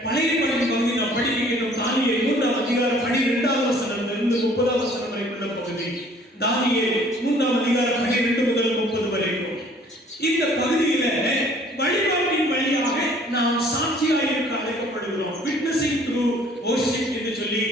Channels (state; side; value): normal; both; correlation 0.56